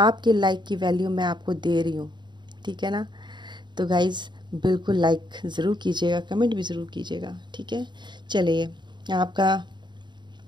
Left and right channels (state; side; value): late; left; 0.22 ms